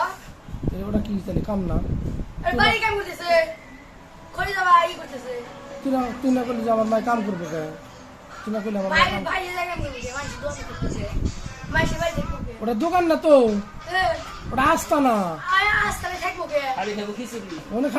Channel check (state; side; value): identical; both; correlation 1.00